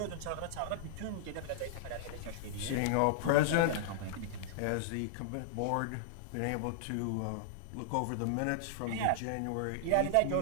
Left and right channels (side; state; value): both; different; correlation -0.01